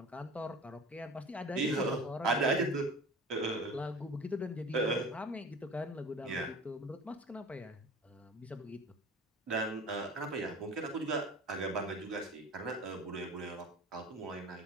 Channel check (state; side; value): normal; both; correlation 0.39